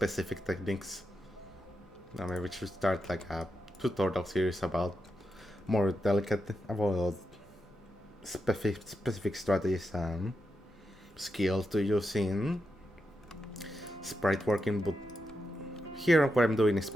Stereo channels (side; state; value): both; normal; correlation 0.86